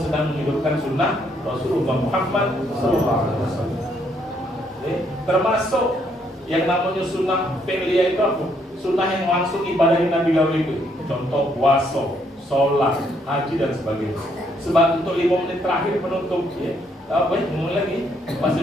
sedang menghidupkan sunnah Rasulullah Muhammad SAW. Termasuk yang namanya sunnah fi'liyah itu apa? Sunnah yang langsung ibadahin Nabi Gawe itu. Contoh puasa, sholat, haji dan sebagainya. Sebab untuk 5 menit terakhir penutup, ya. Apa ya? Mulai lagi,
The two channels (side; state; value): both; normal; correlation 0.71